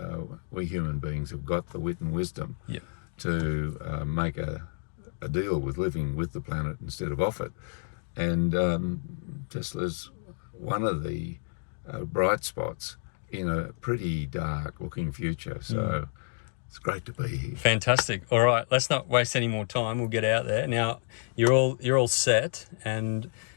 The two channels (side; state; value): right; silent; digital silence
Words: We human beings have got the wit and wisdom Yeah. to make a deal with living with the planet instead of off it. And Tesla's one of the bright spots in a pretty dark looking future. So it's great to be here. Fantastic. All right, let's not waste any more time. We'll get out there. Now, you're all set, and